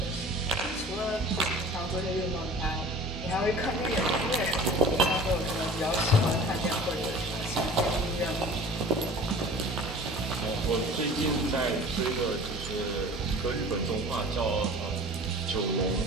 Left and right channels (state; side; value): normal; both; correlation 0.43